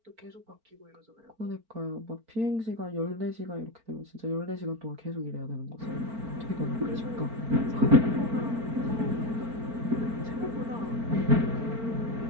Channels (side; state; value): left; late; 4.4 ms